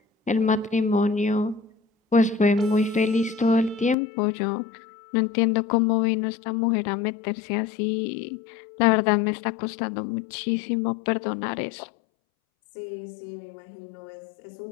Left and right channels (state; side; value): drops out; right; at 4.0 s